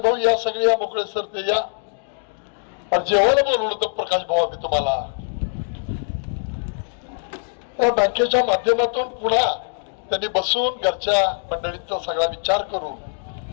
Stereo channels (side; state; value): right; silent; digital silence